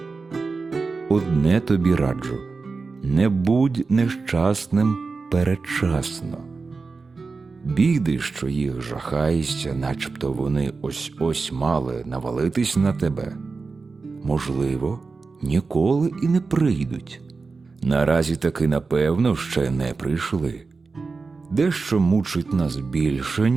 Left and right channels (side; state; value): left; quieter; 4.3 dB